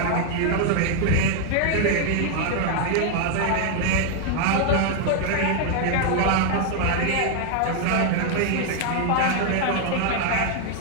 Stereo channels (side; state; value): both; different; correlation 0.00